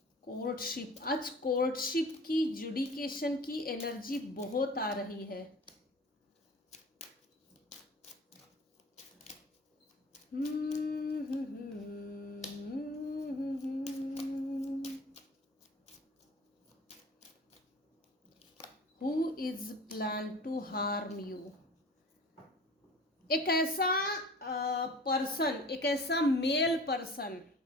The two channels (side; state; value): both; normal; correlation 0.42